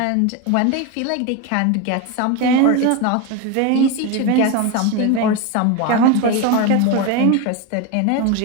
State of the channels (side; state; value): both; different; correlation 0.03